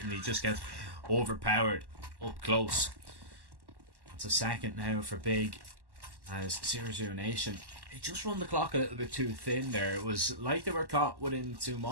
and he just gets overpowered up close. It's a second now for Big as 0-0 Nation. They just run the clock a little bit too thin there. It was like they were caught within two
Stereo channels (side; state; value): left; late; 1.1 ms